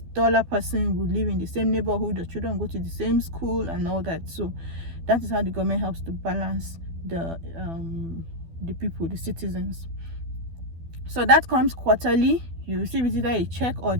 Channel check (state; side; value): late; left; 12 ms